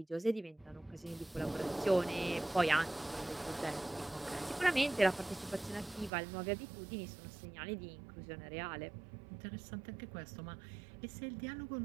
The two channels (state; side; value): drops out; left; at 6.1 s